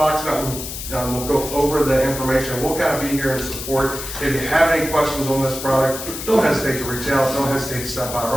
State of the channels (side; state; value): left; noise; hiss, 8 dB below the sound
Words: Mountain will go over the information. We'll kind of be here in support. If you have any questions on this product, don't hesitate to reach out. Don't hesitate to stop by our